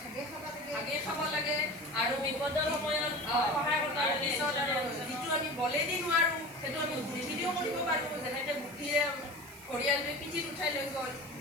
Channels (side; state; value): right; noise; hiss, 18 dB below the sound